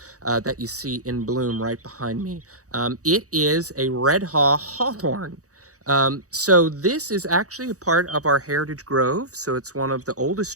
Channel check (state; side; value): late; left; 0.66 ms